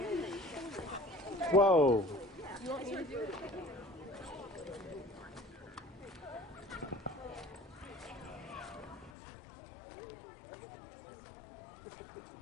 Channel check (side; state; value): right; drops out; at 9.1 s